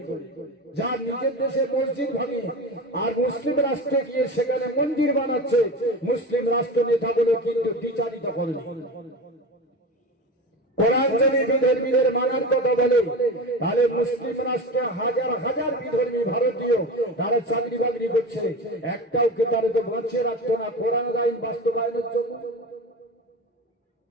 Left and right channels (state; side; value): normal; both; correlation 0.28